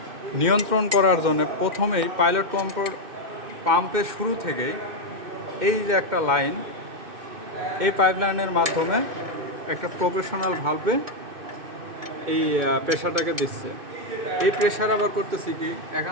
নিয়ন্ত্রণ করার জন্য প্রথমেই পাইলট কন্ট্রোল পাম্পের শুরু থেকেই এই যে একটা লাইন, এই পাইপলাইনের মাধ্যমে একটা প্রফেশনাল ভালভে এই প্রেশারটাকে দিচ্ছে। এই প্রেশার আবার করতেছি কি,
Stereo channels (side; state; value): left; late; 2.6 ms